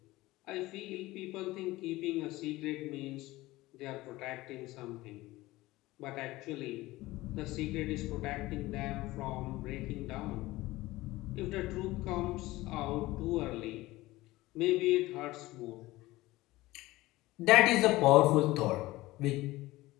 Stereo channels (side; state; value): right; quieter; 18.7 dB